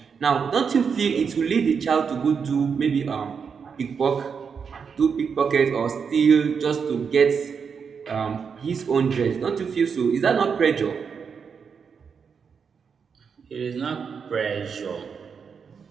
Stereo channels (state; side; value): quieter; left; 6.2 dB